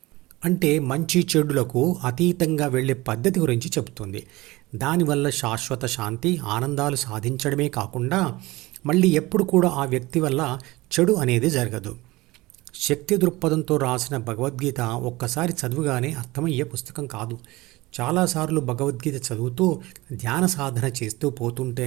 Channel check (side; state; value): left; quieter; 20.5 dB